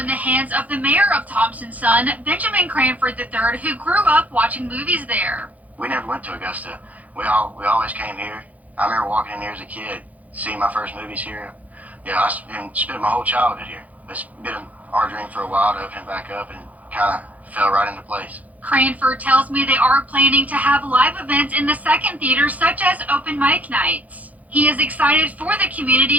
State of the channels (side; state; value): left; late; 0.075 ms